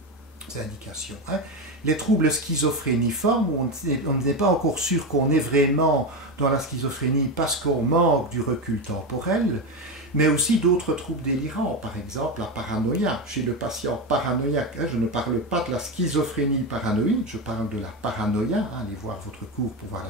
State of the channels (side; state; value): both; normal; correlation 0.16